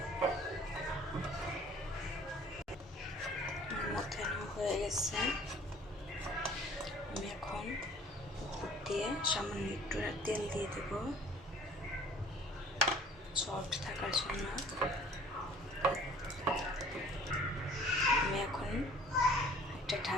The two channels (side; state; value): both; normal; correlation 0.52